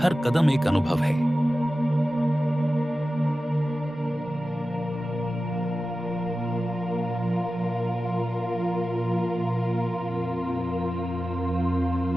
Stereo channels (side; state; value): both; normal; correlation 0.94